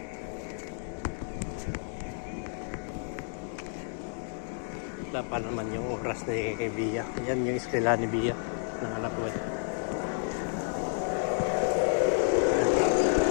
wala pa naman yung oras ni Bia. Yan yung eskwela ni Bia ng anak ko.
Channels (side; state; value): right; silent; 57 dB below the other